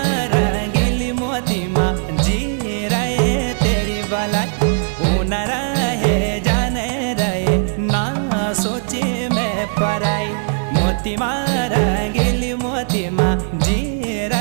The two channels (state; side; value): silent; left; digital silence